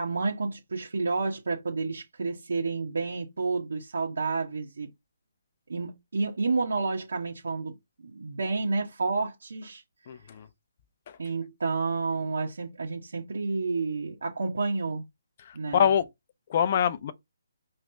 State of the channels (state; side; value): inverted; both; correlation -0.79